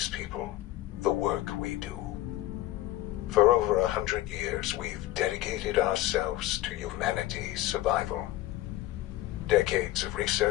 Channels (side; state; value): right; quieter; 15.8 dB